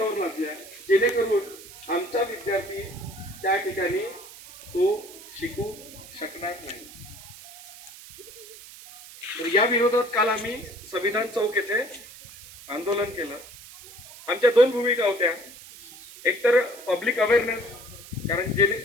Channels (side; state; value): right; noise; hiss, 17 dB below the sound